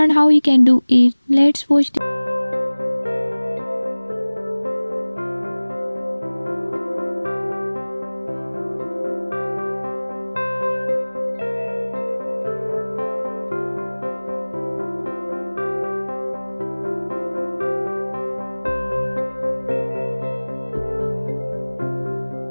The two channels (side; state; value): both; inverted; correlation -1.00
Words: how you can do it. Let's watch.